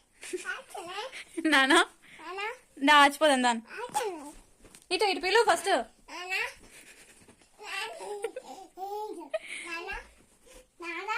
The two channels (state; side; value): identical; both; correlation 1.00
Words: నానా దా ఆచిపోదాం దాని ఇటు ఇటు పిలువు ఫస్ట్